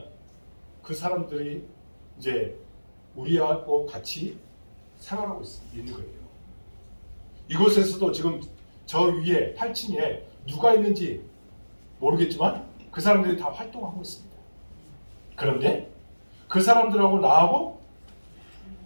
그 사람들이 이제 우리하고 같이 생활하고 있는 거예요. 이곳에서도 지금 저 위에 8층에 누가 있는지 모르겠지만 그 사람들이 다 활동하고 있습니다. 그런데 그 사람들하고 나하고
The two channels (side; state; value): both; inverted; correlation -1.00